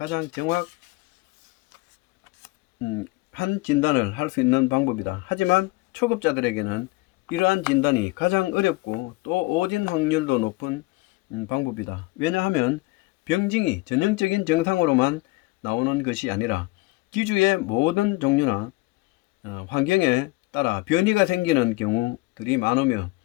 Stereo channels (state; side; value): quieter; right; 22.4 dB